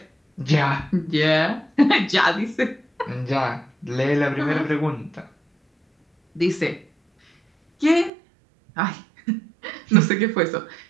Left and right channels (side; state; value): left; drops out; at 8.1 s